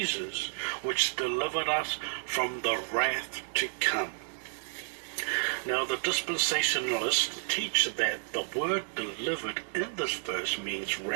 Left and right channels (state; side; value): silent; left; digital silence